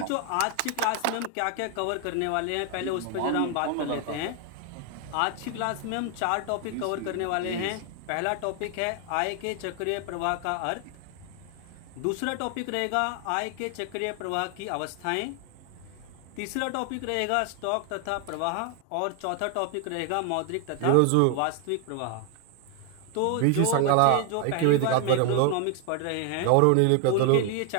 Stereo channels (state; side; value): different; both; correlation 0.00